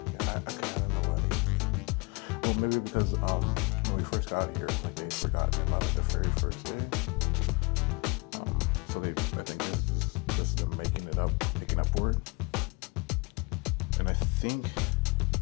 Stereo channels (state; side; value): quieter; right; 28.7 dB